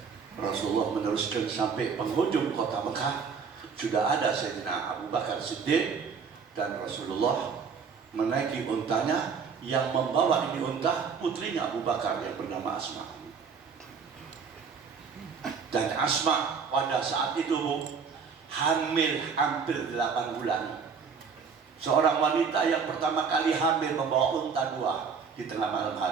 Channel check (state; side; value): quieter; left; 5.9 dB